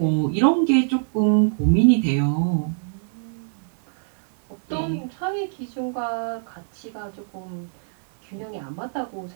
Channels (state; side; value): silent; left; digital silence